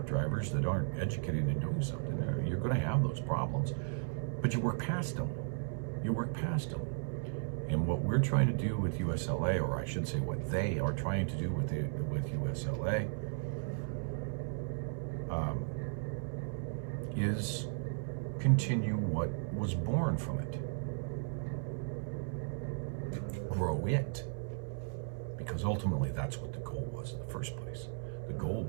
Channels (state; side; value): silent; left; 54 dB below the other